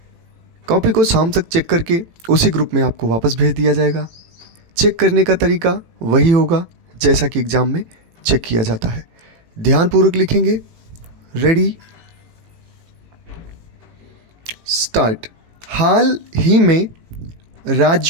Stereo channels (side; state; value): left; late; 18 ms